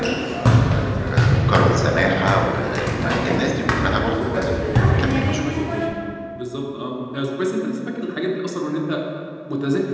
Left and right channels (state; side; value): identical; both; correlation 1.00